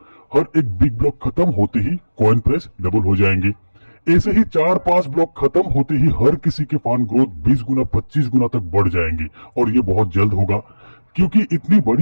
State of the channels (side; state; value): both; inverted; correlation -1.00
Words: हर एक बिग ब्लॉक खत्म होते ही कॉइन प्राइस डबल हो जाएंगे। ऐसे ही 4-5 ब्लॉक खत्म होते ही हर किसी के फंड ग्रोथ 20 गुना 25 गुना तक बढ़ जाएंगे और ये बहुत जल्द होगा क्योंकि इतनी